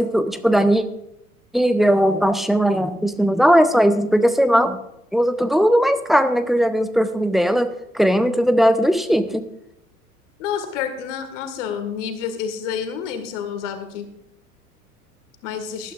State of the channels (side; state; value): both; normal; correlation 0.89